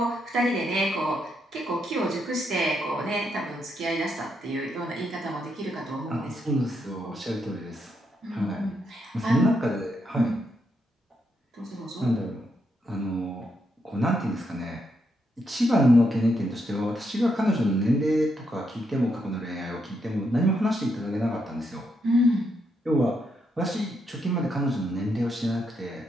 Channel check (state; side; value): normal; both; correlation 0.79